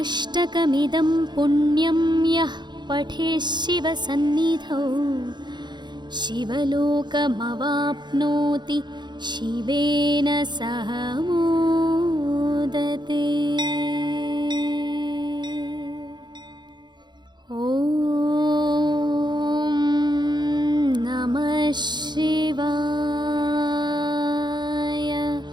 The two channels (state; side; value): late; left; 0.21 ms